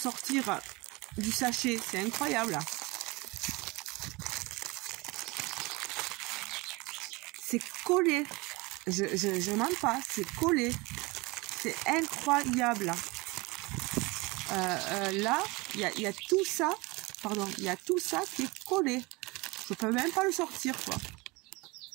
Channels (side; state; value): left; quieter; 24.4 dB